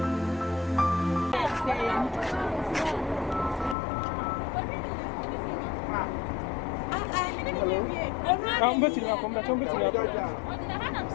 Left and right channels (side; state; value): right; drops out; at 3.8 s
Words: I'm going to come back.